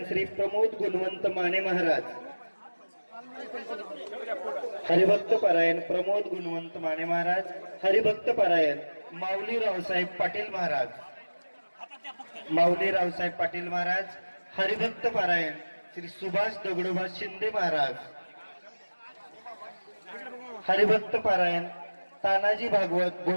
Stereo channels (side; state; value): both; inverted; correlation -1.00